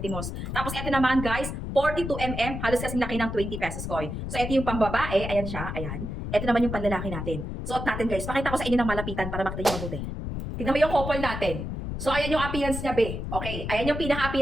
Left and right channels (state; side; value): noise; left; rumble, 5 dB below the sound